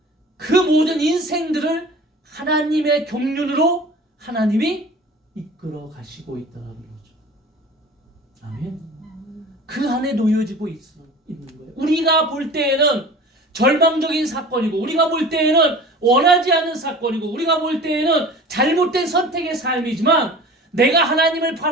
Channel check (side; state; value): both; normal; correlation 0.40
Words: 그 모든 인생들을 하나님의 경륜으로 하나님이 이끌어 가시고 있다는 거죠. 아멘. 그 안에 놓여지고 있는 거예요. 우리가 볼 때에는 절망적인 사건이고, 우리가 볼 때에는 원하지 않는 사건이고, 우리가 볼 때에는 잘못된 선택의 삶이지만, 내가 하나님을